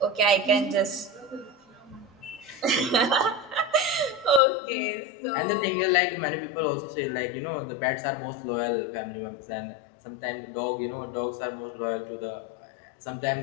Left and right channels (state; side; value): drops out; right; at 4.4 s